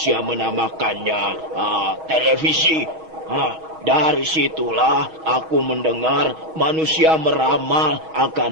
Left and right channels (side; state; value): left; late; 6.3 ms